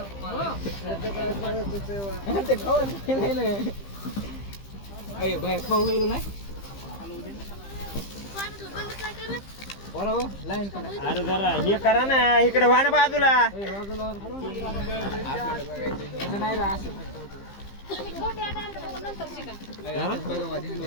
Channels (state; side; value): late; right; 15 ms